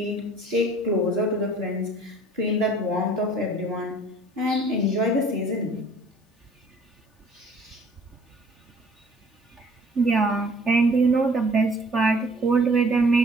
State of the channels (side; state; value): both; normal; correlation 0.53